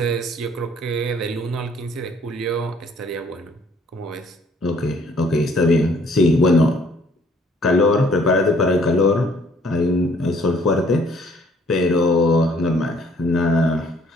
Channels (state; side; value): normal; both; correlation 0.61